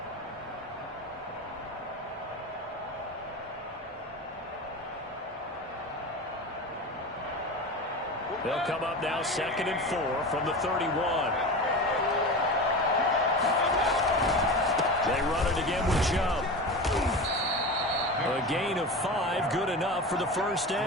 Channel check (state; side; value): normal; both; correlation 0.28